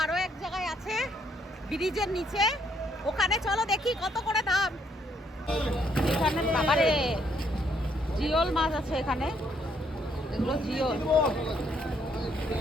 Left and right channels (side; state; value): both; normal; correlation 0.70